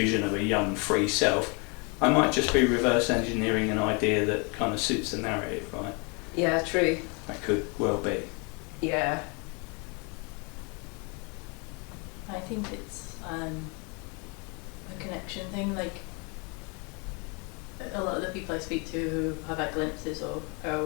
of a young free self, I might just be reverse engineering an idea that kind of suits the narrative, right? Yeah, true. That could well be. Yeah. I think it's a connection thing. Like, a lot of the people I speak to who have had glimpses or are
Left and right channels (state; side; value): quieter; right; 32.4 dB